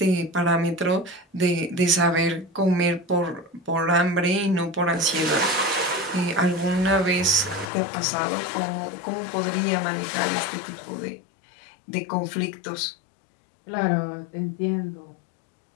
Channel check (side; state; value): right; drops out; at 7.7 s